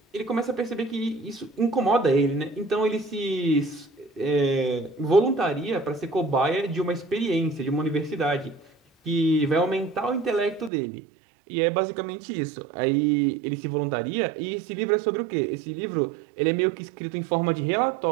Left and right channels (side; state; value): left; drops out; at 10.7 s